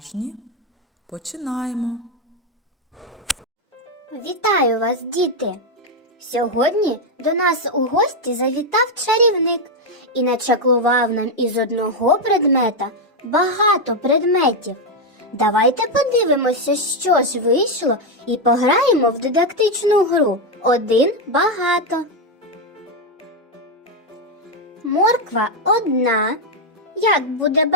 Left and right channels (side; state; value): both; normal; correlation 0.05